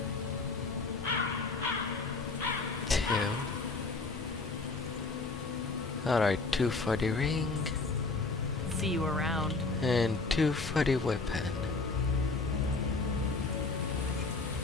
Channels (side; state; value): right; quieter; 3.8 dB